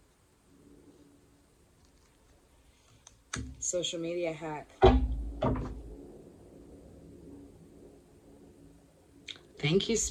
Social media hack. Thank you,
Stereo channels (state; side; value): identical; both; correlation 1.00